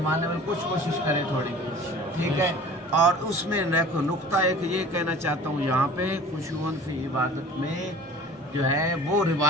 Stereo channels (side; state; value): both; normal; correlation 0.44